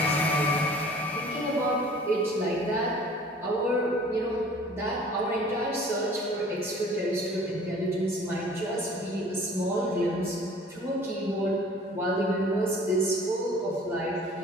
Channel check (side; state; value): both; normal; correlation 0.49